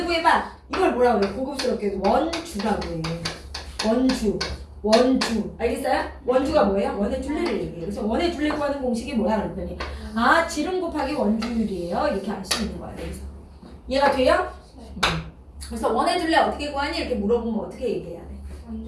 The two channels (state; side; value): identical; both; correlation 1.00